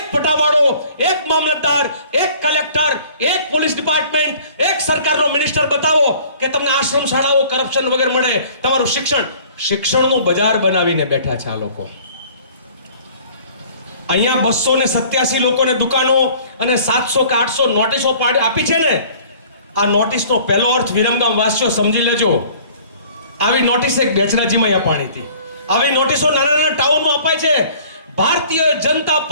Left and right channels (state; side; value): inverted; both; correlation -0.51